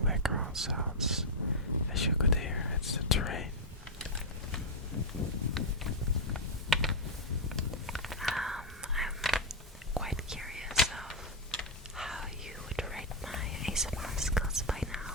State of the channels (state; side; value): normal; both; correlation -0.01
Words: background sounds. As you could hear, it's the train. I'm quite curious of how you would rate my ASMR skills by